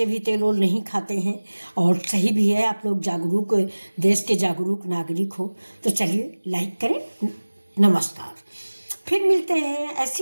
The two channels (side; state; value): both; inverted; correlation -1.00